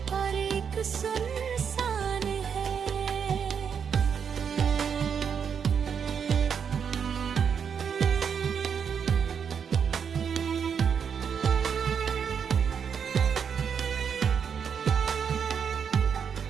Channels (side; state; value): left; quieter; 7.1 dB